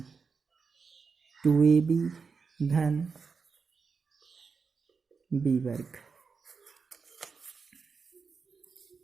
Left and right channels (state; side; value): quieter; left; 5.2 dB